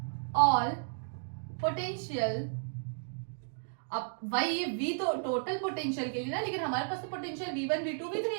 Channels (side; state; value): left; silent; digital silence